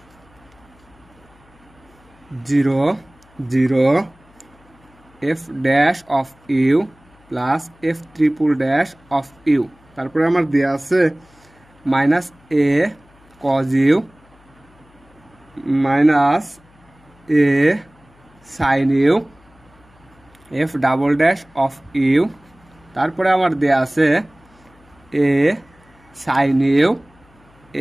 0 0 f dash of you plus F triple dash of u, তারপরে আমার দেওয়া আছে minus A cos you minus A sine U F double dash of u, তারপরে আমার দেয়া আছে এ sine u,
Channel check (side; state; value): left; noise; hum, 29 dB below the sound